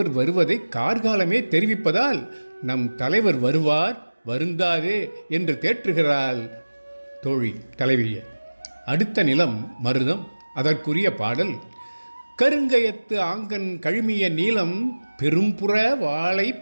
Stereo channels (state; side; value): inverted; both; correlation -1.00